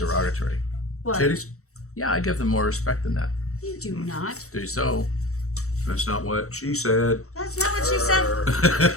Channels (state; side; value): late; right; 0.64 ms